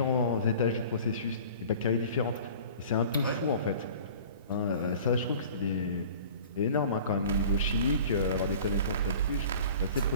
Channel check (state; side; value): inverted; both; correlation -0.44